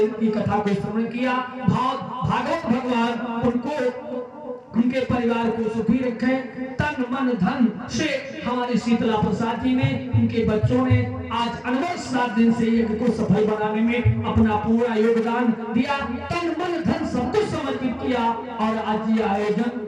की कथा को श्रवण किया, भागवत भगवान उनको, उनके परिवार को सुखी रखें। तन मन धन से हमारे शीतला प्रसाद जी ने, उनके बच्चों ने आज अनवर 7 दिन से यज्ञ को सफल बनाने में अपना पूरा योगदान दिया, तन मन धन सब कुछ समर्पित किया, और आज ये आयोजन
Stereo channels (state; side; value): identical; both; correlation 1.00